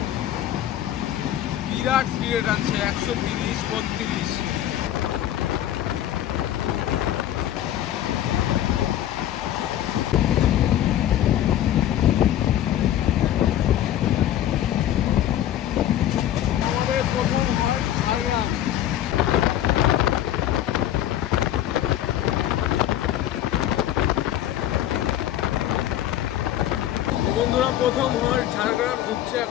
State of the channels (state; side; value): quieter; right; 11.9 dB